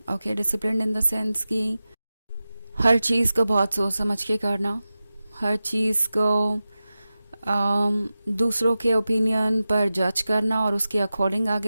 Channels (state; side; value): inverted; both; correlation -0.94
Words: Okay, disciplined in the sense कि हर चीज़ को बहुत सोच समझ के करना, हर चीज़ को दूसरों के ओपिनियन पर जज करना और उसके अकॉर्डिंग